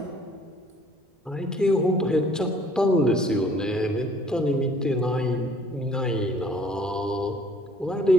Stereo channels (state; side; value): normal; both; correlation 0.57